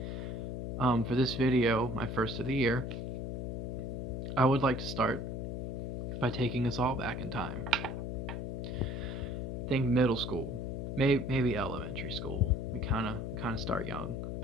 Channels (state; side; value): noise; left; hum, 4 dB below the sound